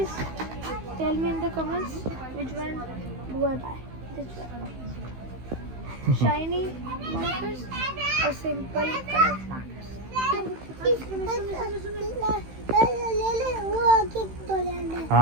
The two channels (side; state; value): left; late; 16 ms